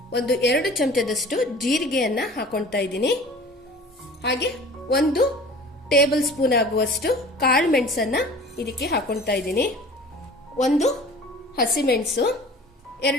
ಒಂದು 2 ಚಮಚದಷ್ಟು ಜೀರಿಗೆಯನ್ನ ಹಾಕೊಳ್ತಾ ಇದ್ದೀನಿ. ಹಾಗೆ 1 ಟೇಬಲ್ ಸ್ಪೂನ್ ಆಗುವಷ್ಟು ಕಾಳು ಮೆಣಸನ್ನ ಇದಕ್ಕೆ ಹಾಕೊಳ್ತಾ ಇದ್ದೀನಿ. 1 ಹಸಿಮೆಣಸು,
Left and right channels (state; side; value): normal; both; correlation 0.44